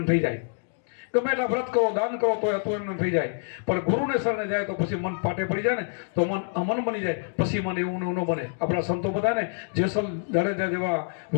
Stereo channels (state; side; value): silent; right; digital silence